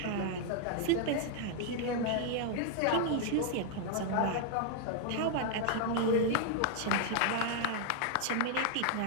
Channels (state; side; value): different; both; correlation 0.00